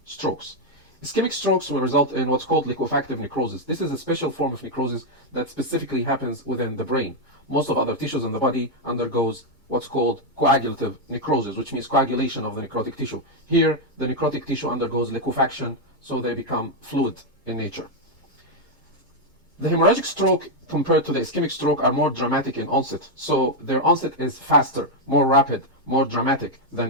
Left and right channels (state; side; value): normal; both; correlation 0.01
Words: strokes. Ischemic strokes will result in what's called liquefactive necrosis. This is a special form of necrosis that specifically happens within the brain. Most of other tissues in the body undergoes what's called coagulative necrosis, which means coagulation of the necrotic tissue. Here, the necrotic tissue undergoes liquefaction, so they become fluid in nature. The hemorrhagic stroke compared to the ischemic stroke are more dramatic in onset. So their onset is faster, more rapid, more dramatic